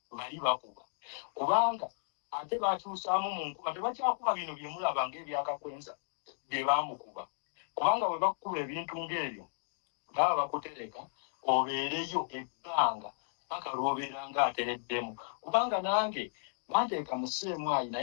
bali bakuba kubanga ate bakyusaamu mu nkuba tebakyakuba bino bye mulaba ng'ebyakakwenza bye baamukuba kubanga bwe bakukuba ebintu ng'ebyo baba bakutereka obeereyo ebbanga paka lw'obeera ng'atereddemu kubanga nange banteeka mu Sseemwayi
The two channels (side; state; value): right; silent; digital silence